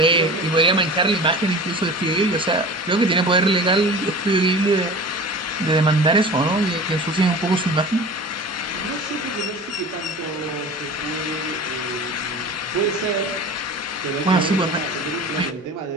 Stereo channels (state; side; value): normal; both; correlation 0.37